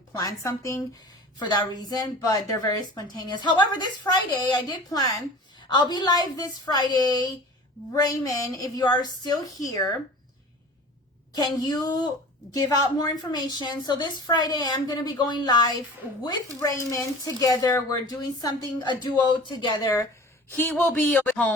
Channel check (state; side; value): normal; both; correlation 0.41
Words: something for that reason, but they're very spontaneous. However, this Friday, I did plan. I'll be live this Friday. Raymond, if you are still here, can you give out more information? So this Friday, I'm going to be going live with Raymond together. We're doing something, a duo together. He will be at